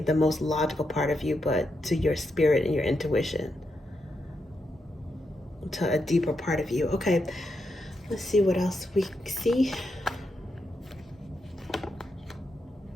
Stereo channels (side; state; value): both; normal; correlation 0.84